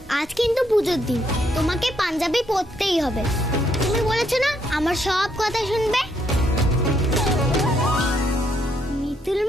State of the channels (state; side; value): normal; both; correlation 0.73